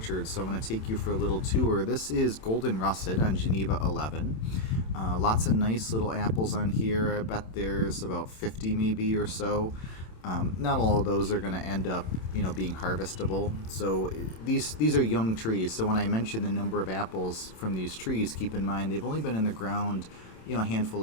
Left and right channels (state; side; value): late; right; 27 ms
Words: so I'm going to take you for a little tour. This is Golden Russet on Geneva 11. Lots of nice little apples on here. I bet there's about 50 maybe or so. Not all of those are going to end up, being harvestable. So these are young trees. So when I mention the number of apples from these trees, keep in mind they've only been in the ground a handful